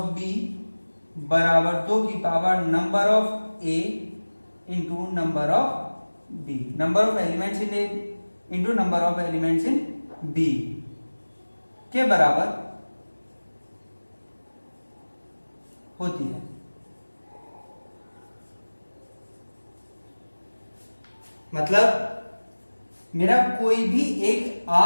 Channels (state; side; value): inverted; both; correlation -1.00